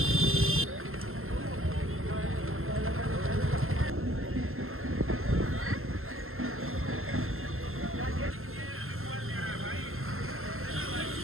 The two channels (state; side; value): late; left; 0.62 ms